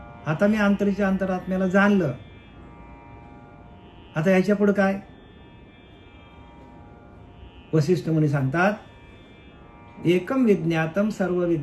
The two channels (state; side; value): identical; both; correlation 1.00